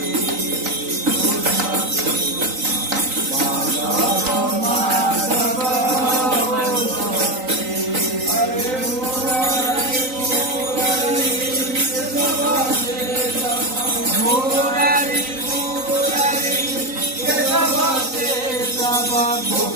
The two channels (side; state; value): left; late; 3.9 ms